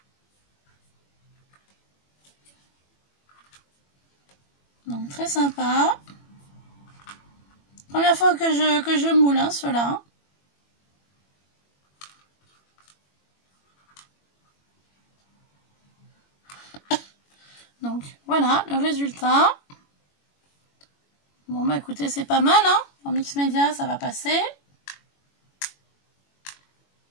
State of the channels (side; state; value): right; late; 21 ms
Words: Donc très sympa. Première fois que je moule hein, ceux-là. Donc voilà le résultat. Bon bah écoutez c'est pas mal hein. En mix média ça va passer.